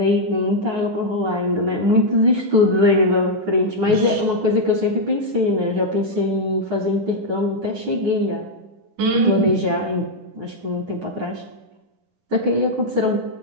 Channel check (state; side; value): late; left; 10 ms